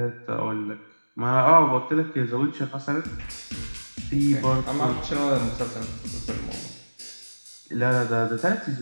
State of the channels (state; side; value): inverted; both; correlation -1.00